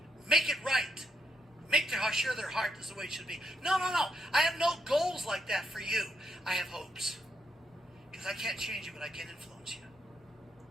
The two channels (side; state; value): both; normal; correlation 0.78